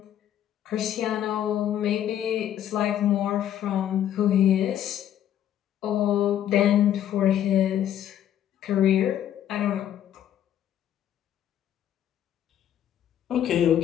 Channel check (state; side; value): quieter; right; 10.8 dB